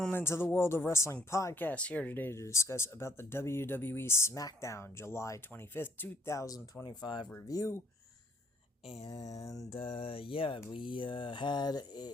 to the World of Wrestling podcast. Here today to discuss about the WWE Smackdown July 25th, 2025 review. And we had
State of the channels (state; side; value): normal; both; correlation 0.63